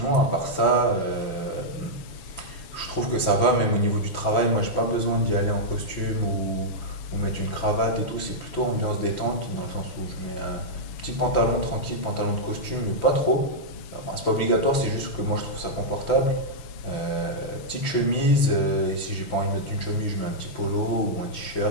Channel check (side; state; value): right; late; 6.0 ms